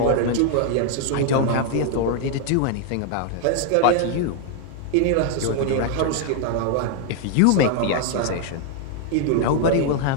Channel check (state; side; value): different; both; correlation 0.00